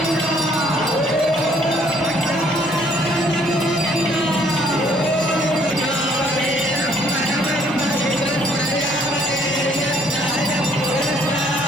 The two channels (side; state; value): right; noise; hum, 25 dB below the sound